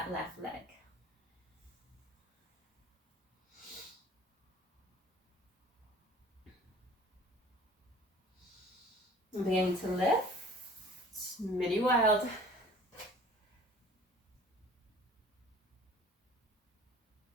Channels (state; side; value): normal; both; correlation 0.48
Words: left leg. And beginning to lift. Mini wild.